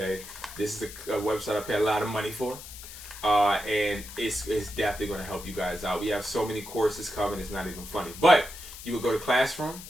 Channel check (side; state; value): left; noise; hiss, 13 dB below the sound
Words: This is a website I pay a lot of money for, and it's definitely going to help you guys out. We have so many courses coming, it's not even funny. But you would go to Classroom,